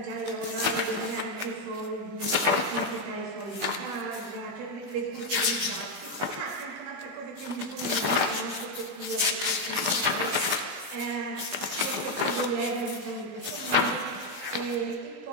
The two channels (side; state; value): left; late; 20 ms